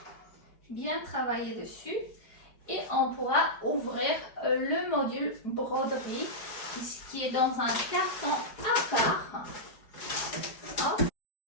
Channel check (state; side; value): late; right; 4.8 ms